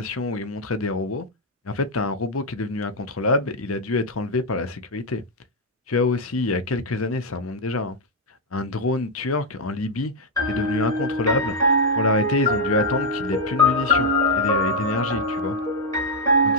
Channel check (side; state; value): both; normal; correlation -0.01